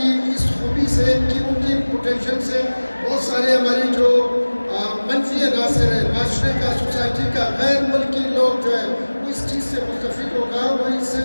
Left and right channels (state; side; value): inverted; both; correlation -1.00